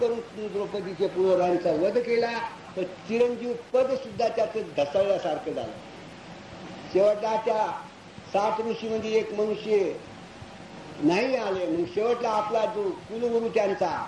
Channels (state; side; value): identical; both; correlation 1.00